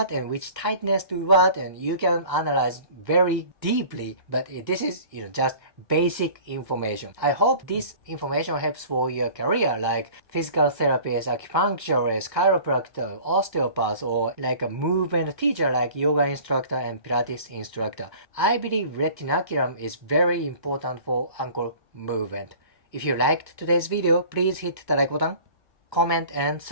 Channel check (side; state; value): right; late; 1.4 ms